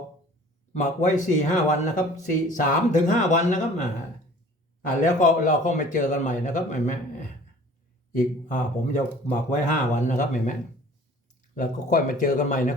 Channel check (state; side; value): normal; both; correlation 0.48